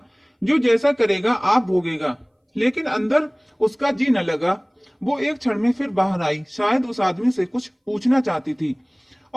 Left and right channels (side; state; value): both; identical; correlation 1.00